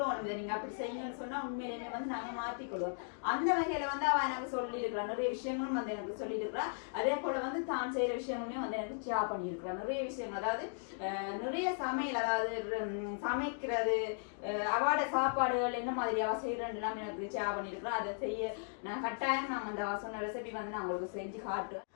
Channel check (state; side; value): silent; right; digital silence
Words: நீங்க அப்படி செய்யுங்கன்னு சொன்னா உண்மையிலுமே வந்து நாங்க மாத்திக்கொள்வோம். அந்த வகையில வந்து அவ எனக்கு சொல்லி இருக்கிறா நிறைய விஷயங்களும் வந்து எனக்கு சொல்லி இருக்கிறா. அதே போல வந்து தான் செய்யற விஷயங்களுமே வந்து எனக்கு ஷேர் பண்ணியிருக்கிறா நிறைய விஷயங்கள். அதாவது நிறைய சமையல் அதாவது சமைக்கிறது அவாட சாப்பாடுகள் என்ன மாதிரி அவ செய்யறதுலாம் எனக்கு ஷேர் பண்ணியிருக்கிறா. அதை செய்ய நான் கட்டாயம் நான் அந்த அவ சொன்ன ரெசிபி வந்து நான் உங்களுக்கு செஞ்சு காட்டுறேன்.